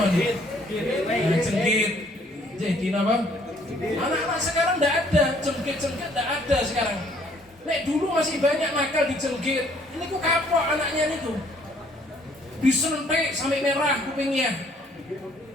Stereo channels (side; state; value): both; normal; correlation 0.62